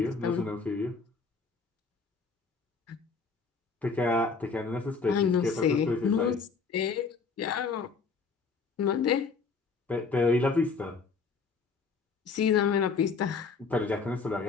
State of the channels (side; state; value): right; quieter; 4.8 dB